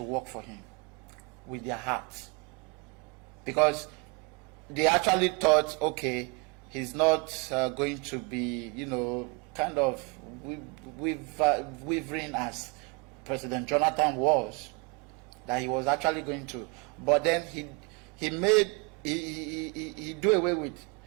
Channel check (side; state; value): left; quieter; 30.8 dB